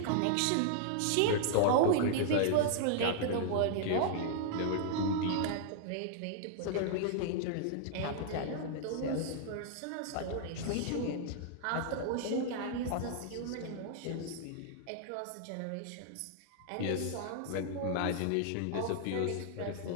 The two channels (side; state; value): both; different; correlation -0.01